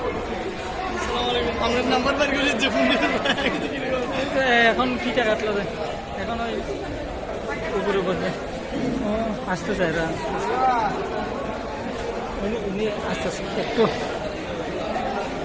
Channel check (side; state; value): both; identical; correlation 1.00